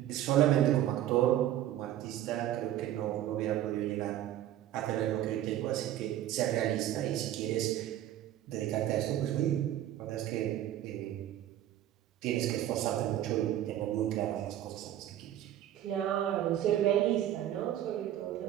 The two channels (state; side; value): quieter; left; 12.3 dB